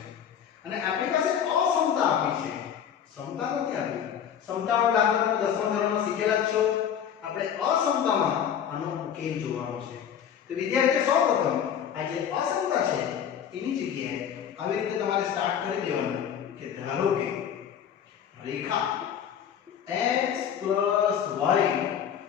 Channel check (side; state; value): right; quieter; 8.7 dB